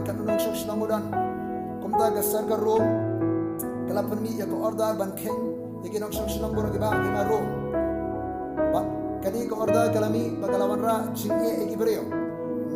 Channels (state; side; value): identical; both; correlation 1.00